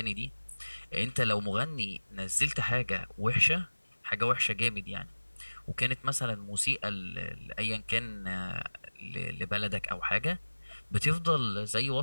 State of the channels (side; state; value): both; inverted; correlation -1.00